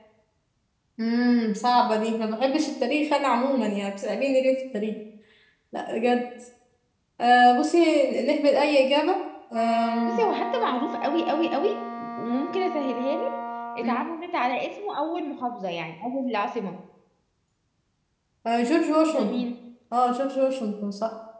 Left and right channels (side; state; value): both; identical; correlation 1.00